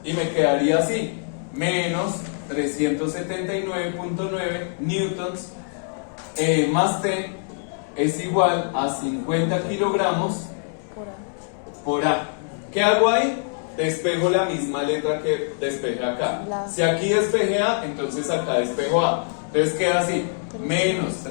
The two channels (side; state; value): right; silent; 63 dB below the other